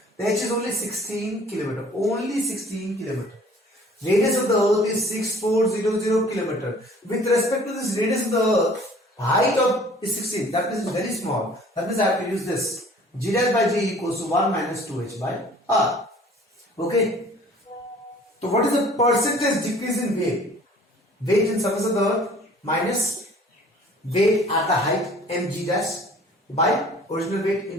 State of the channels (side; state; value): both; normal; correlation 0.52